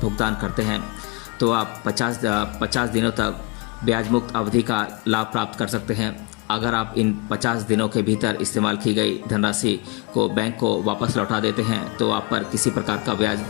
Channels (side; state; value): right; quieter; 25.1 dB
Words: करते हैं तो आप 50 दिनों तक ब्याज मुक्त अवधि का लाभ प्राप्त कर सकते हैं। अगर आप इन 50 दिनों के भीतर इस्तेमाल की गई धनराशि को बैंक को वापस लौटा देते हैं तो आप पर किसी प्रकार का ब्याज